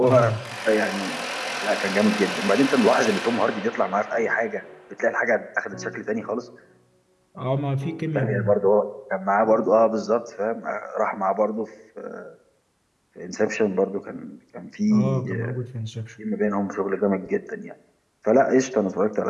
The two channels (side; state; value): both; identical; correlation 1.00